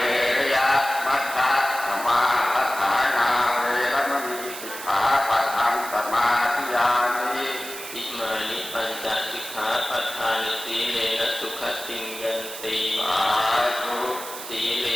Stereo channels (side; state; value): right; noise; hiss, 10 dB below the sound